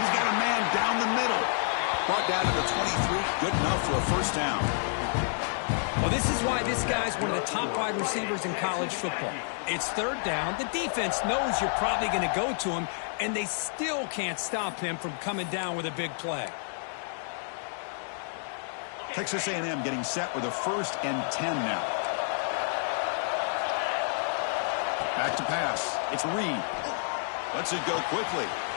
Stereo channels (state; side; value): silent; right; digital silence